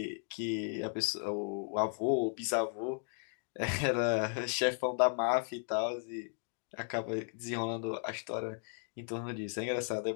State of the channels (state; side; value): silent; right; 54 dB below the other